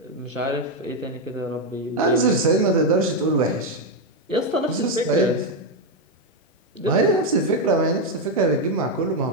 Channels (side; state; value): both; normal; correlation 0.05